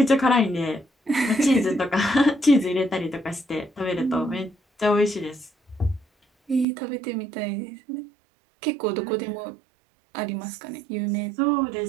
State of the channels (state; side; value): drops out; left; at 6.7 s